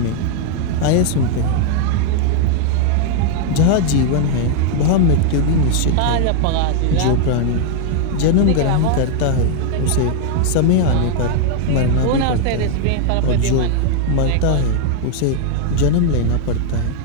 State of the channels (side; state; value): both; different; correlation 0.00